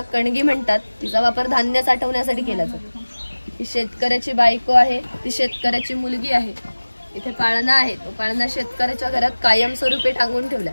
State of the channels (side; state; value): both; inverted; correlation -1.00